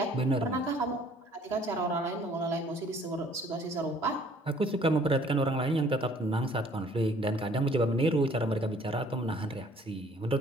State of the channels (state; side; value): normal; both; correlation 0.57